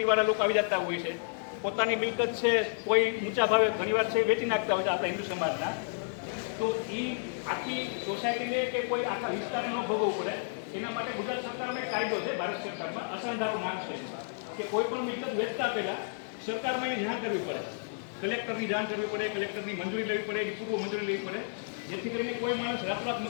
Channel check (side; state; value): right; silent; digital silence